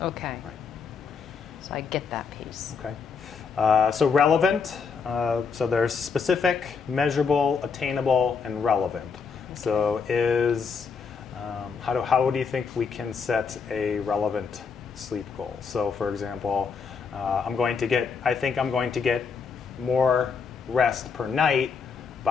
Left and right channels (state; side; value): quieter; right; 5.6 dB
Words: Okay. Right. So I get that piece. Okay. So relevant. So there's specific, measurable, attainable, and relevant. So how do you think we can set a relevant sleep goal? So for example, I think I'm going to get more rest per night